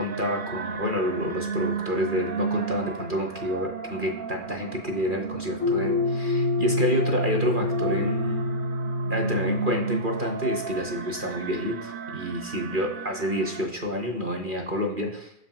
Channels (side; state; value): left; late; 2.4 ms